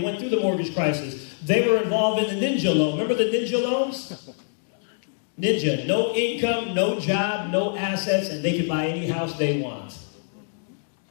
went through the mortgage crisis. They were involved in the ninja loan. Remember the ninja loans? Ninja. No income, no job, no assets, and they could buy any house they want.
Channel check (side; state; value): right; silent; digital silence